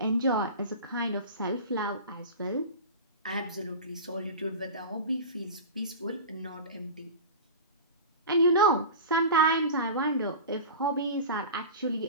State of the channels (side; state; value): both; inverted; correlation -0.31